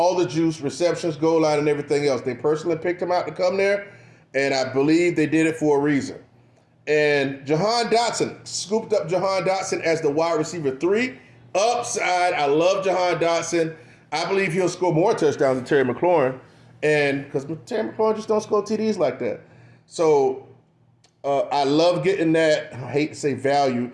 the juice, receptions, goal line, and everything else. They personally picked him out to come there, and I believe they did it for a reason. And Jahan Dotson, scooped up Jahan Dotson as the wide receiver 3. Upside, I love Jahan Dotson. I believe he'll score more touchdowns than Terry McLaurin, and because Terry McLaurin just don't score TDs like that. So I love getting that, I hate to say value,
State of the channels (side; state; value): both; identical; correlation 1.00